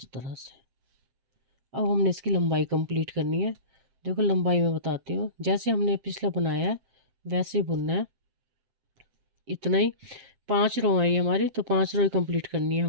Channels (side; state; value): left; late; 7.7 ms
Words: तरह से। अब हमने इसकी लंबाई कंप्लीट करनी है। देखो लंबाई मैं बताती हूँ, जैसे हमने पिछला बनाया है वैसे ही बुनना है, इतना ही। 5 रो आई हमारी, तो 5 रो ही कंप्लीट करनी है